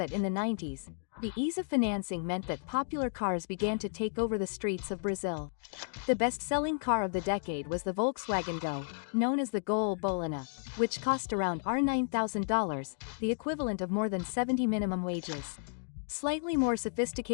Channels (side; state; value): right; silent; digital silence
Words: in the 90s, the ease of financing meant that popular cars began to take over the streets of Brazil. The best-selling car of the decade was the Volkswagen Go, known as the Gol Bolina, which cost around $9,000, the equivalent of more than 70 minimum wages. Slightly more